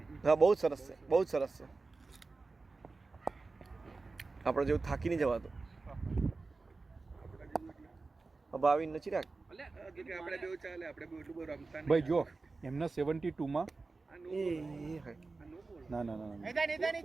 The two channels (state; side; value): quieter; left; 3.8 dB